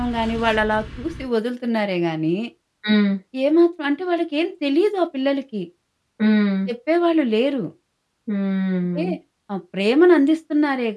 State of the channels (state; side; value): identical; both; correlation 1.00